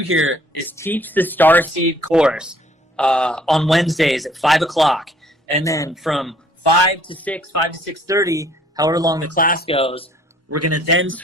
is teach the Starseed course on Wednesdays at 5 o'clock. And then from 5 to 6, 5 to 6:30, however long the class goes, we're going to then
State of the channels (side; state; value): both; normal; correlation 0.59